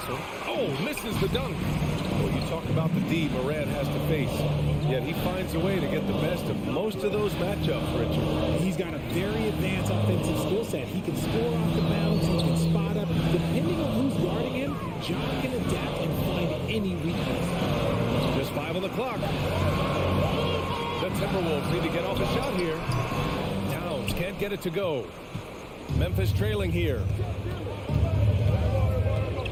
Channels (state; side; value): identical; both; correlation 1.00